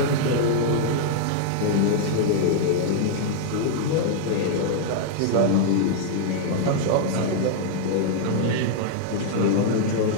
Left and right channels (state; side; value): different; both; correlation -0.01